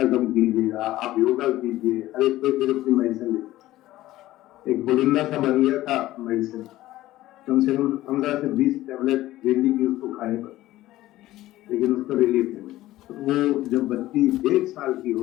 कम कीजिएगा, आप योगा कीजिए, हर एक कोई फिर अपनी मेडिसिन लेते। एक बोलिंदा सा बन गया था मेडिसिन, कम से कम 15 से 20 टैबलेट डेली की उसको खानी पड़ती, लेकिन उसका रिलीफ नहीं मिला। तो वो जब बच्ची 1.5 साल की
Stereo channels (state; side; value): quieter; right; 15.9 dB